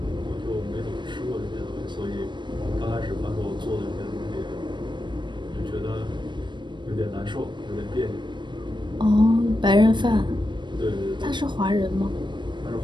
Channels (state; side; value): late; left; 0.22 ms